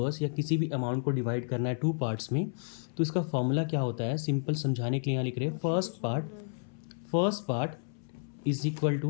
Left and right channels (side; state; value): right; silent; 57 dB below the other